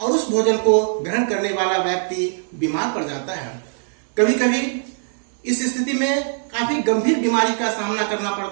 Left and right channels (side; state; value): left; silent; digital silence